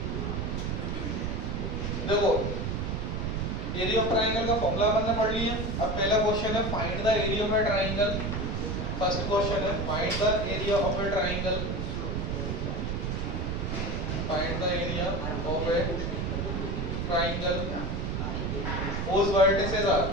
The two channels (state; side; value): noise; right; rumble, 1 dB below the sound